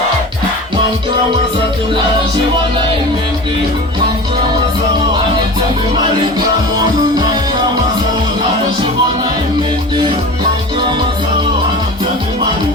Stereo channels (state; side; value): normal; both; correlation 0.34